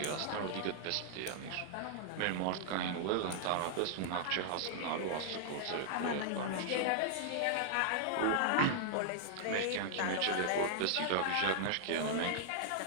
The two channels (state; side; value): different; both; correlation -0.01